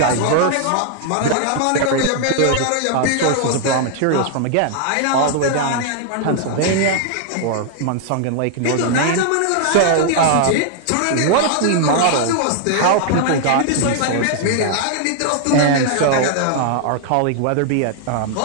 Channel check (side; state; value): both; different; correlation 0.00